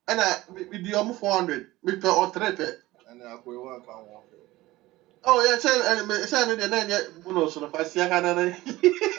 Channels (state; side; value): quieter; left; 18.2 dB